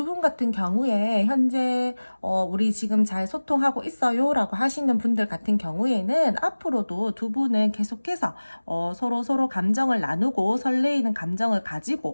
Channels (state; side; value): inverted; both; correlation -1.00